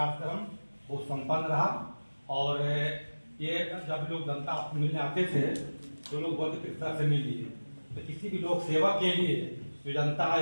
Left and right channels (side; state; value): both; inverted; correlation -1.00